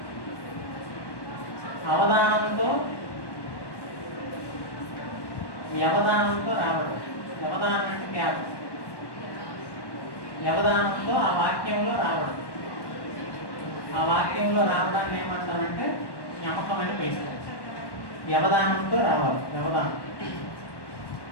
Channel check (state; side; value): late; right; 1.1 ms